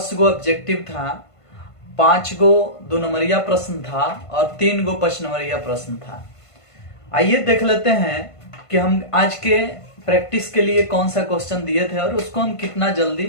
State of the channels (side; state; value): right; late; 1.5 ms